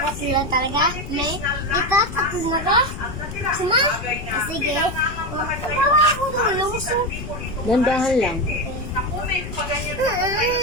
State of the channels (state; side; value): noise; left; rumble, 9 dB below the sound